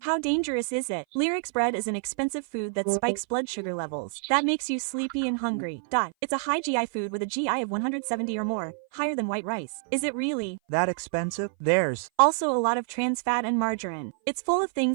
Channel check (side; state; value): left; silent; 57 dB below the other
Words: How dangerous is it? Lyrics bread is an expensive food that spikes blood sugar levels. That makes you sleepy and hungry. It's a high GI food with a GI of 170 or more, higher than white rice. Is it really that expensive? There's also a lot of trans fat and margarine. It's full of